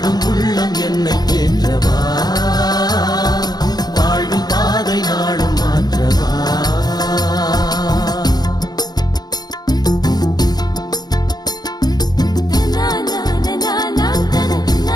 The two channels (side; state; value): right; late; 0.19 ms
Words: உள்ளம் என்னை தேற்றவா வாழ்வின் பாதை நாளும் மாற்றவா